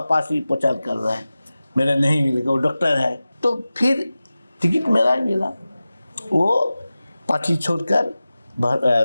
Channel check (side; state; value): both; inverted; correlation -0.96